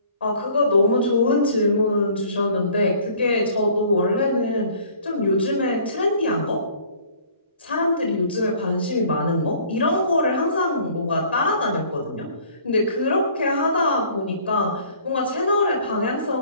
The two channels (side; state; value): both; inverted; correlation -0.54